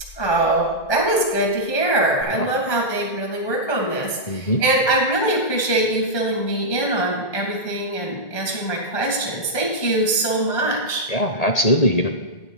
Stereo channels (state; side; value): late; right; 1.8 ms